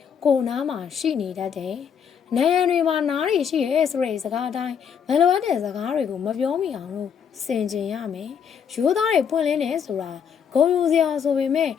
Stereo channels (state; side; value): quieter; right; 7.5 dB